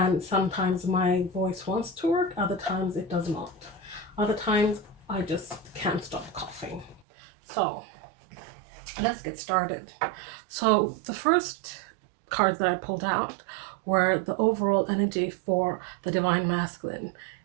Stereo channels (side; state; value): left; drops out; at 7.1 s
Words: sometimes my voice wants to work, other times it does not. Other times I just can't stop coughing. So let's get started. So the first cards that I pulled out were the overall energy for the Divine Masculine